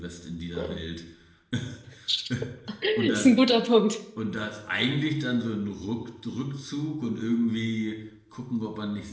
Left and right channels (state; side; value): identical; both; correlation 1.00